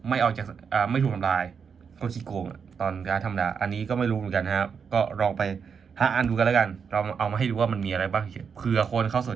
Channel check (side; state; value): left; quieter; 6.4 dB